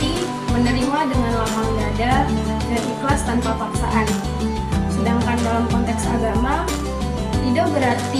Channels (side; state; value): both; identical; correlation 1.00